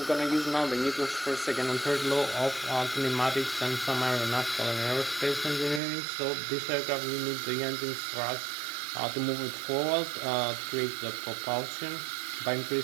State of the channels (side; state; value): left; drops out; at 5.8 s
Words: gonna use now the Newton's first, second, and third law of kinematics and some aeronautical and aerospace engineering. So this aircraft, you need the engine's thrust to move it forward to create the propulsion by